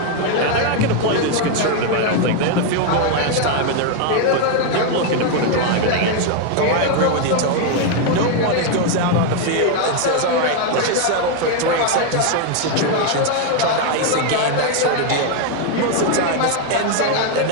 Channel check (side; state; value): both; different; correlation 0.01